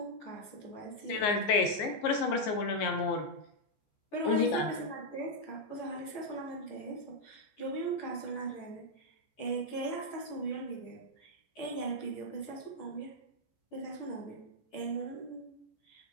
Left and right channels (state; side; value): late; right; 14 ms